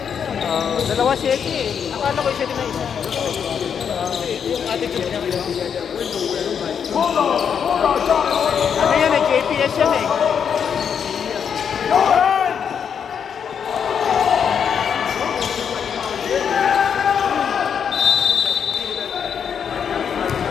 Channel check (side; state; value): right; quieter; 7.4 dB